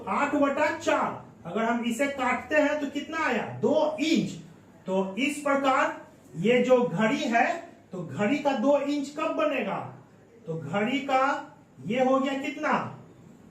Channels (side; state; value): both; identical; correlation 1.00